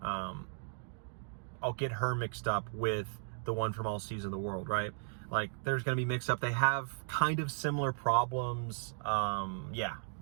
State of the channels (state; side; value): silent; left; digital silence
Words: I'll get her mixed up with the one from All Seas of the World, right? Like, there's going to be mixed up. They have kind of similar problems. Yeah,